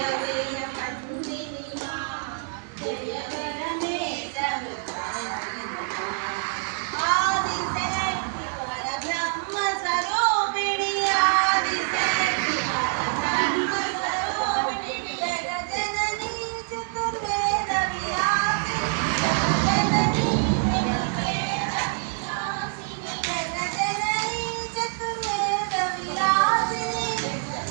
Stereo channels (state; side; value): silent; left; 56 dB below the other